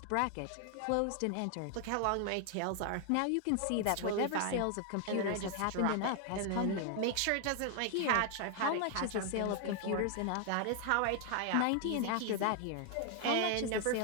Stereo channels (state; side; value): different; both; correlation 0.00